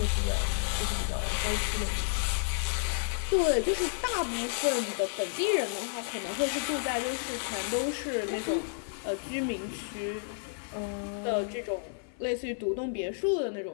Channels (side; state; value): right; silent; 57 dB below the other